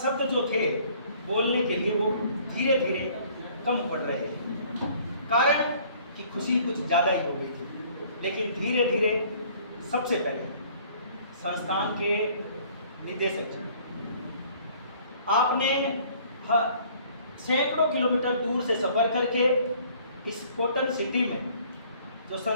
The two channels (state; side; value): inverted; both; correlation -0.56